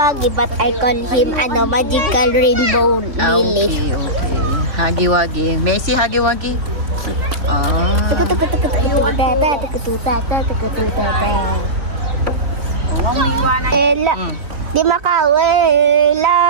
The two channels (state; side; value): late; left; 3.8 ms